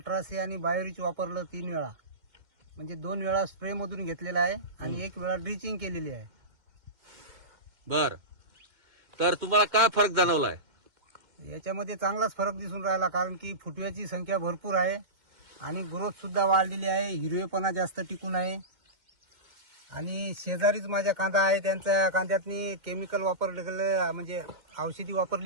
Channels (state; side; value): late; left; 2.1 ms